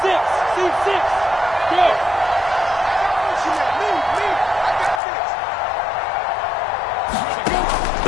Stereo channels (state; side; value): drops out; right; at 5.0 s